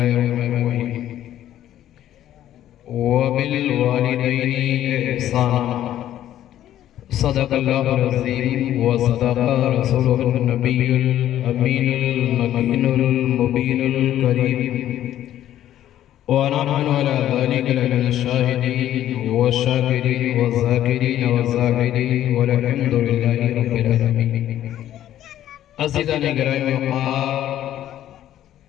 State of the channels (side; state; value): right; quieter; 12.1 dB